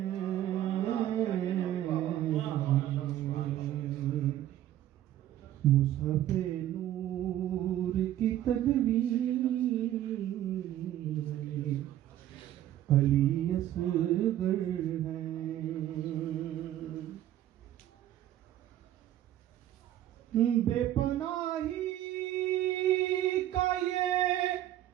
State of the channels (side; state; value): left; quieter; 12.6 dB